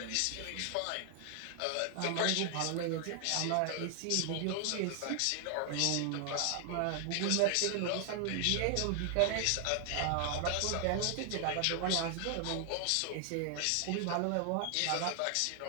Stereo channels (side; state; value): both; different; correlation 0.00